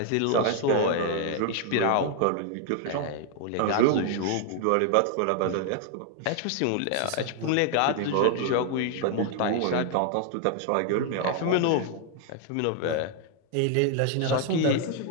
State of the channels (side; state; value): both; different; correlation 0.00